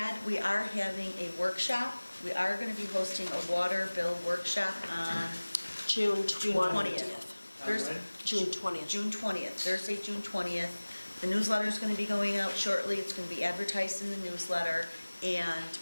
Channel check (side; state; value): both; inverted; correlation -1.00